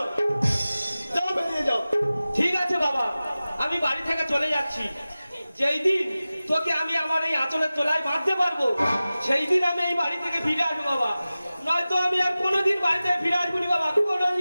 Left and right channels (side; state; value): both; inverted; correlation -0.96